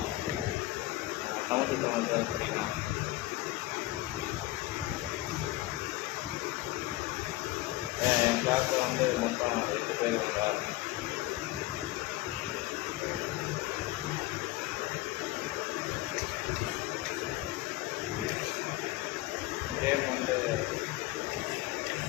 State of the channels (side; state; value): right; quieter; 18.2 dB